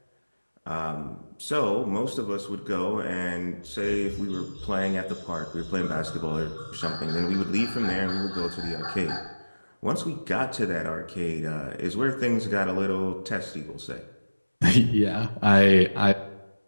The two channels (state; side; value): inverted; both; correlation -1.00